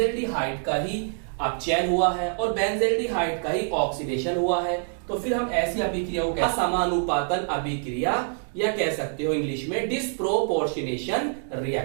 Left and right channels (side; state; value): left; silent; digital silence